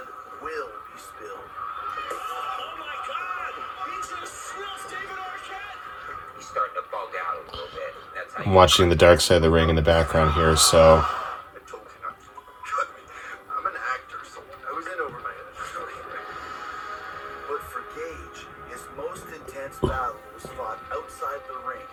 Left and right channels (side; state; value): both; identical; correlation 1.00